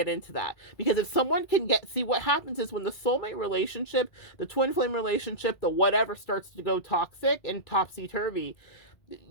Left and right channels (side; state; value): right; late; 2.3 ms